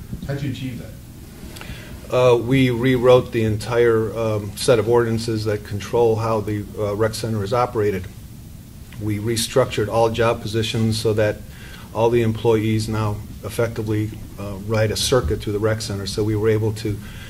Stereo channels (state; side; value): identical; both; correlation 1.00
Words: How'd you achieve that? We rewrote the entire set of ordinances that control how the rec center is operated. We restructured all job positions so that all the employees now effectively ride a circuit through the rec center. So we were able to